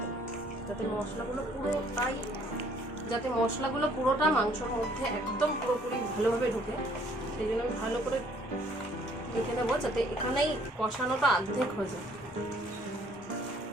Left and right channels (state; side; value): normal; both; correlation 0.61